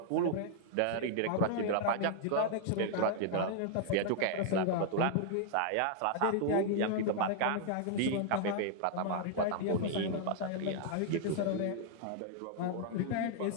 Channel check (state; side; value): different; both; correlation -0.01